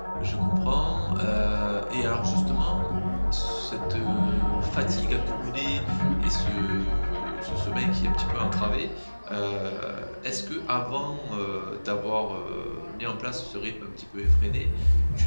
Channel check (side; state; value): both; inverted; correlation -1.00